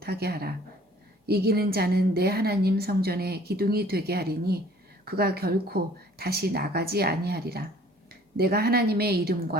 하라. 이기는 자는 내 하나님 성전에 기둥이 되게 하리니 그가 결코 다시 나가지 아니하리라. 내가 하나님의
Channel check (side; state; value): both; normal; correlation 0.54